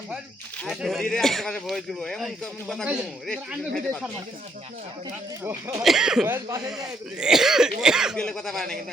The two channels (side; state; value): both; normal; correlation 0.72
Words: ধীরে আশেপাশে ভয়েস দিব এমন কেমন কথা কই রেস্ট্রিকশন ভয়েস পাশে যায় দিলে কথা পায় না কিন্তু